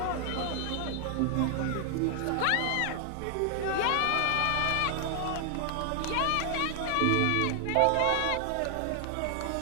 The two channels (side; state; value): both; different; correlation 0.00